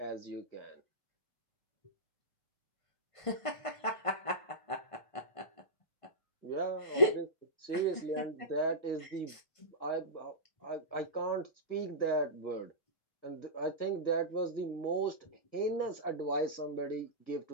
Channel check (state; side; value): late; right; 1.5 ms